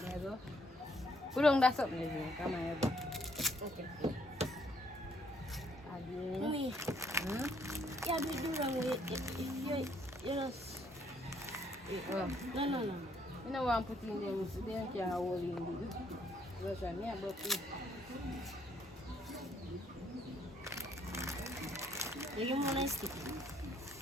Put on that something, is it? Come on, okay. Add in. Me. Yeah, we do wrong with it. You know. No. You know what I'm putting in there, so they can't hold in it. Because I'm here, but you want to stick it?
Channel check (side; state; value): both; normal; correlation 0.67